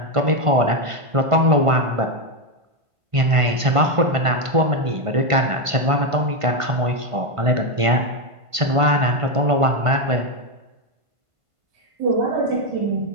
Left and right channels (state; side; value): late; left; 1.5 ms